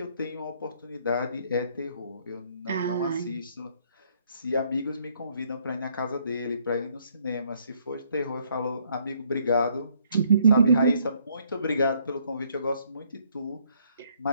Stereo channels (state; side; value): inverted; both; correlation -0.67